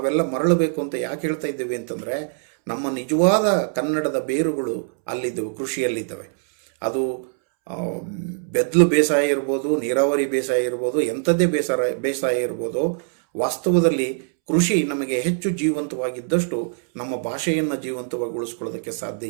ಮರಳಬೇಕು ಅಂತ ಯಾಕೆ ಹೇಳ್ತಾ ಇದ್ದೇವೆ ಅಂತಂದರೆ, ನಮ್ಮ ನಿಜವಾದ ಕನ್ನಡದ ಬೇರುಗಳು ಅಲ್ಲಿದ್ದವು, ಕೃಷಿಯಲ್ಲಿದ್ದಾವೆ. ಅದು ಬೆದ್ಲು ಬೇಸಾಯ ಇರ್ಬೋದು, ನೀರಾವರಿ ಬೇಸಾಯ ಇರ್ಬೋದು, ಎಂಥದ್ದೇ ಬೇಸಾಯ ಇರ್ಬೋದು. ವಾಸ್ತವದಲ್ಲಿ ಕೃಷಿ ನಮಗೆ ಹೆಚ್ಚು ಜೀವಂತವಾಗಿದ್ದಷ್ಟು ನಮ್ಮ ಭಾಷೆಯನ್ನು ಜೀವಂತವಾಗಿ ಉಳಿಸ್ಕೊಳ್ಳೋದಕ್ಕೆ ಸಾಧ್ಯ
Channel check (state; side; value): silent; left; 64 dB below the other